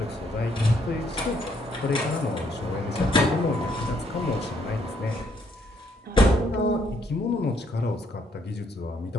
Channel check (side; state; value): both; normal; correlation 0.70